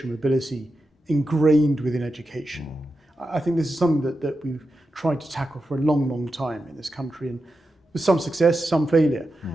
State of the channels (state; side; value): normal; both; correlation 0.90